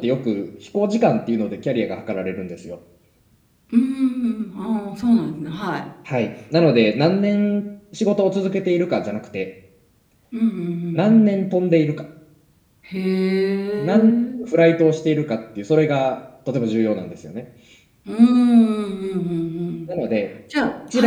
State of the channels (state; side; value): identical; both; correlation 1.00